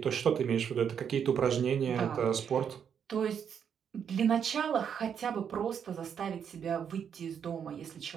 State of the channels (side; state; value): left; quieter; 7.8 dB